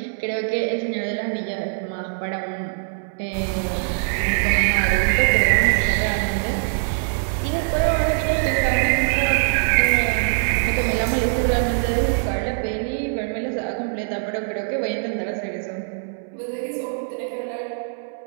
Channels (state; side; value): silent; left; 64 dB below the other